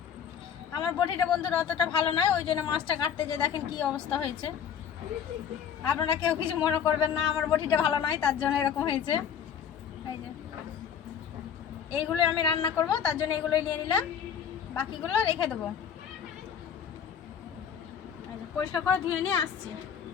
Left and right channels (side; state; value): right; quieter; 8.1 dB